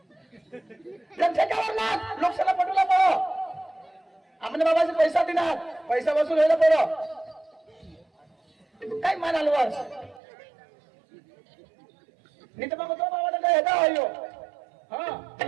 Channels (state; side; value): drops out; left; at 10.2 s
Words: ठेक्यावर नाच लोकशाला पटवला पडो आमने बाबाचे पैसा देणार पैसा वसूल व्हायला पडो काय मानाल वर्ष नहीं तो मैं तो बाबा का हेदा आयो हां